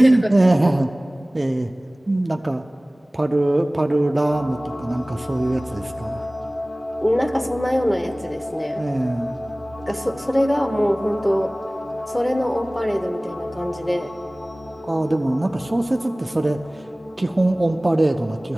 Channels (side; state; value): both; normal; correlation 0.98